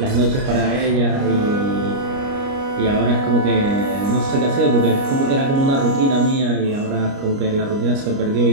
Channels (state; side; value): late; left; 29 ms